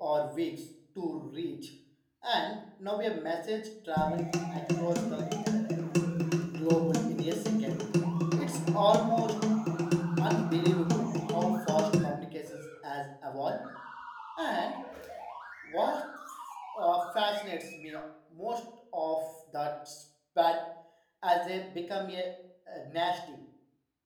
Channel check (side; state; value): both; identical; correlation 1.00